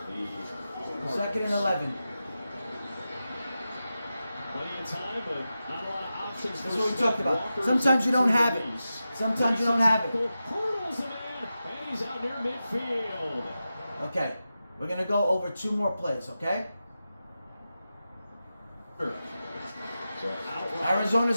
and 11. Plenty of time, but not a lot of options. That's what we talked about. Sometimes you don't have it. Sometimes you don't have it. Hurdles a man, and he's out near midfield. Okay. We're going to go over 2 more plays, okay?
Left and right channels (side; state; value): both; inverted; correlation -0.92